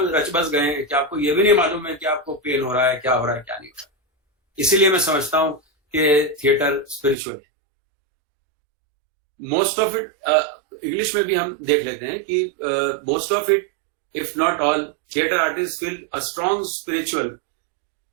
बस गए हैं कि आपको ये भी नहीं मालूम है कि आपको पेन हो रहा है, क्या हो रहा है, क्या नहीं हो रहा है। इसीलिए मैं समझता हूं कि थिएटर स्पिरिचुअल है। मोस्ट ऑफ इट, इंग्लिश में भी हम देख लेते हैं कि most of it, if not all, theater artists feel a strong spiritual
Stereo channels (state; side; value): drops out; left; at 7.2 s